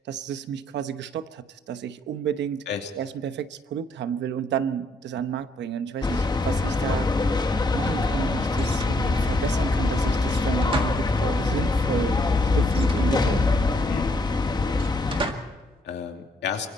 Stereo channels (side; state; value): both; normal; correlation 0.71